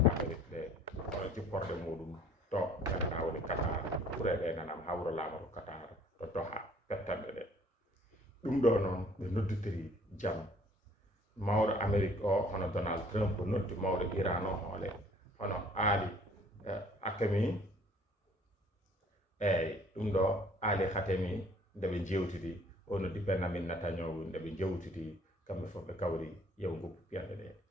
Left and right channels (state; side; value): normal; both; correlation 0.56